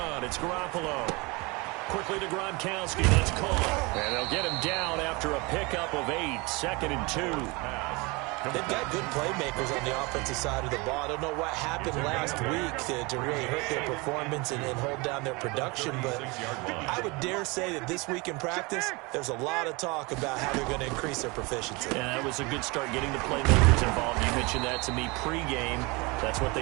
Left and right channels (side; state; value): left; quieter; 26.3 dB